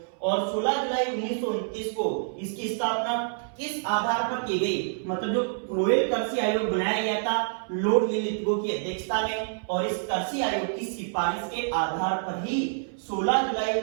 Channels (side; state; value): left; silent; 60 dB below the other